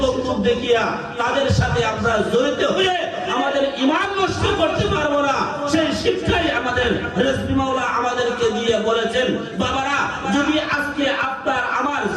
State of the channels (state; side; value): identical; both; correlation 1.00